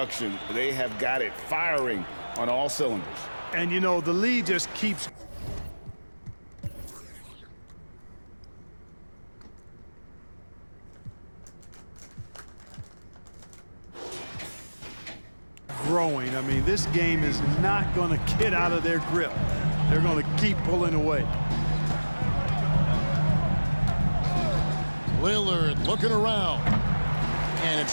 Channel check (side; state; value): both; inverted; correlation -1.00